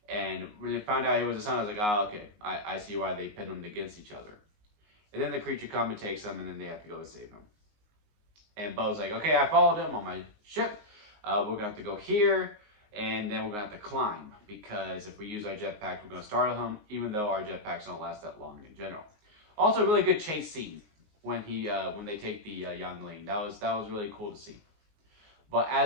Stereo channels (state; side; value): late; left; 19 ms